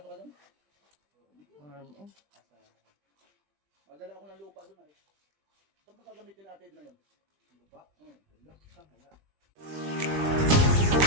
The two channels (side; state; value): left; late; 20 ms